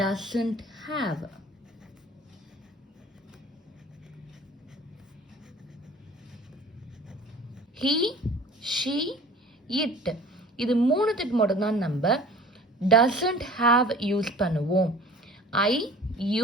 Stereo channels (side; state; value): both; normal; correlation 0.46